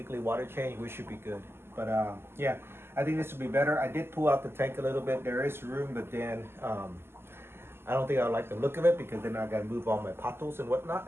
water change, we should be good. But yeah, I think this would be better. I did pull out the tank a little bit. There is room, but then I don't think I like the look of it because then I got to move all my potos and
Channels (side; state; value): left; late; 0.12 ms